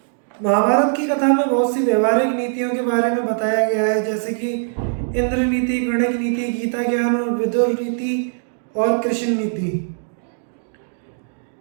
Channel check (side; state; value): left; silent; 65 dB below the other